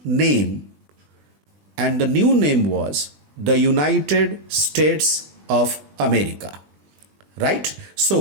name, and the new name was the United States of America. Right?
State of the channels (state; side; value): late; left; 20 ms